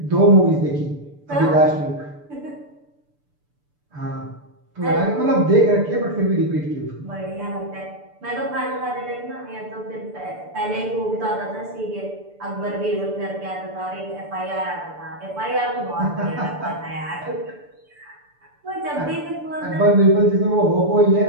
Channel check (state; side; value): late; left; 6.9 ms